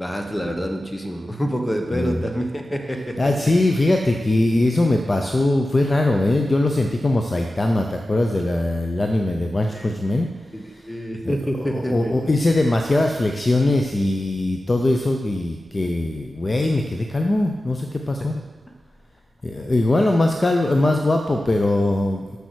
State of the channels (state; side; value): normal; both; correlation 0.94